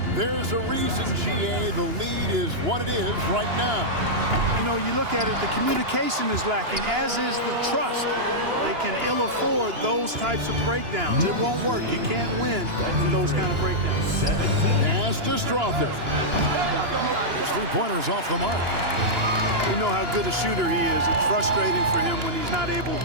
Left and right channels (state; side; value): late; left; 2.9 ms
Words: There's a reason, GA, the lead is what it is right now. You know, you look at it, the communication is lacking, as is the trust. They can ill afford those types of breakdowns. It won't work. You can't win in those kind of breakdowns. Pass to Strother. His three-pointer's off the mark. You know how good a shooter he is. It's frustrating for him when he's not able